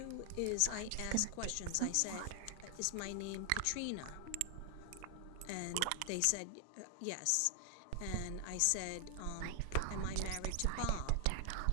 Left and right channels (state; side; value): different; both; correlation 0.00